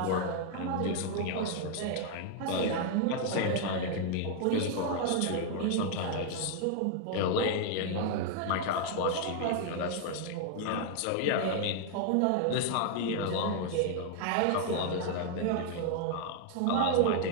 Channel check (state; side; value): different; both; correlation 0.00